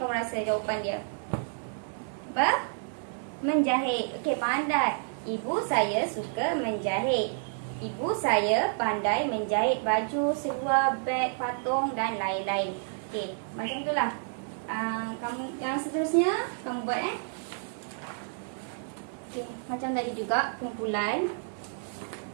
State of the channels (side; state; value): left; silent; digital silence